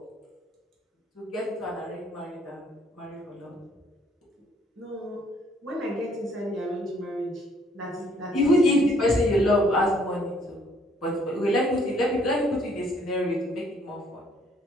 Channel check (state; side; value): normal; both; correlation 0.64